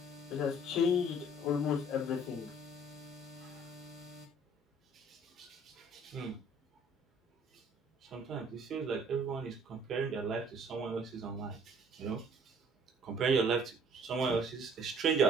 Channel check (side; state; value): both; normal; correlation 0.56